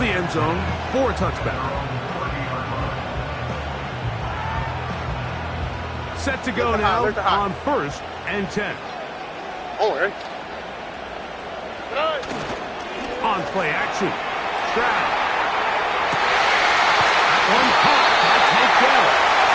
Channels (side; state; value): both; identical; correlation 1.00